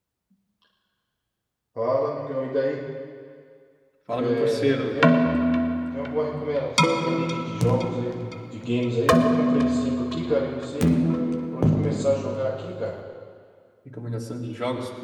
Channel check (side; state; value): both; identical; correlation 1.00